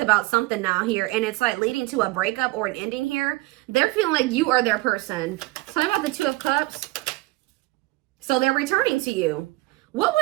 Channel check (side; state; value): left; quieter; 20.8 dB